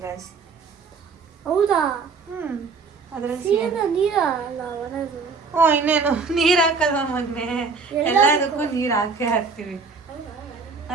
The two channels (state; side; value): quieter; left; 4.7 dB